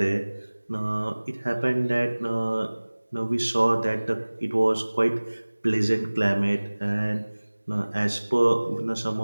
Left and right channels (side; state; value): both; inverted; correlation -1.00